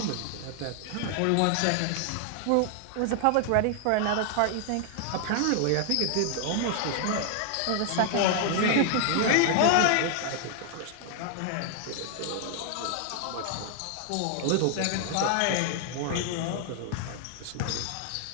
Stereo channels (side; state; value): both; different; correlation 0.00